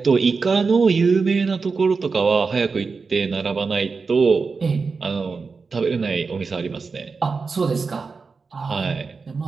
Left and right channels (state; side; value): quieter; left; 4.7 dB